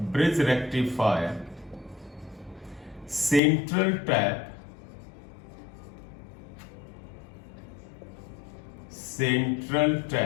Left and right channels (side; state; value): right; drops out; at 3.4 s